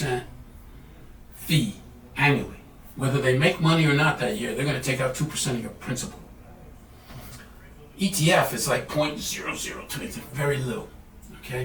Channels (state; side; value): identical; both; correlation 1.00